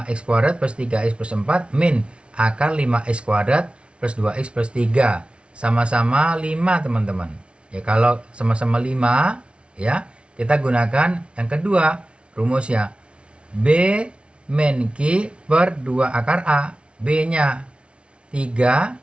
kuadrat plus 3x plus 4 min akar 5x kuadrat plus 2x plus 3. Sama-sama 5, teman-teman. Ya, kalau sama-sama 5, ya, kita gunakan yang kedua rumusnya. B min Q per 2 akar A. B-nya 3,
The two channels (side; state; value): left; late; 0.059 ms